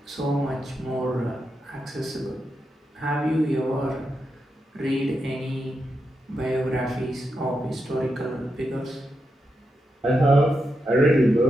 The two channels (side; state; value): both; normal; correlation 0.86